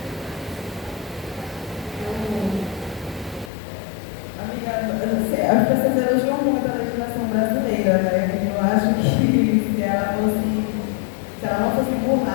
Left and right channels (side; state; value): right; drops out; at 3.5 s